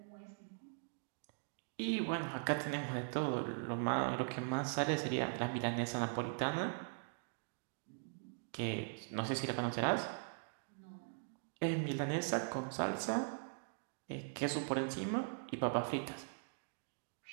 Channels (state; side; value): silent; left; digital silence